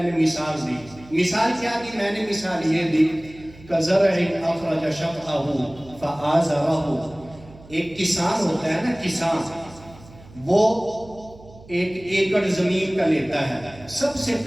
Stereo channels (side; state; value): right; noise; hum, 21 dB below the sound